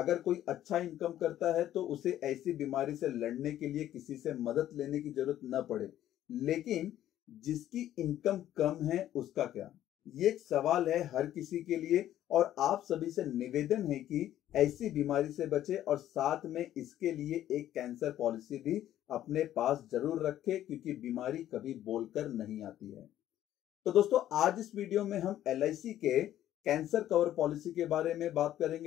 कोई अच्छा इनकम करता है तो उसे ऐसी बीमारी से लड़ने के लिए किसी से मदद लेने की जरूरत न पड़े, लेकिन जिसकी इनकम कम है उसका क्या? ये एक सवाल है हर किसी के लिए, और आप सभी से निवेदन है कि ऐसी बीमारी से बचे और साथ में इसके लिए एक कैंसर पॉलिसी भी अपने पास जरूर रखें, क्योंकि बीमारी कभी बोलकर नहीं आती है। तो दोस्तों, आज इस वीडियो में हम LIC के कैंसर कवर पॉलिसी के बारे में बात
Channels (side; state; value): right; quieter; 12.3 dB